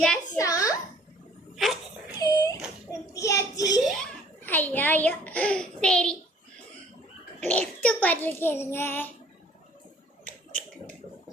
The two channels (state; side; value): normal; both; correlation 0.55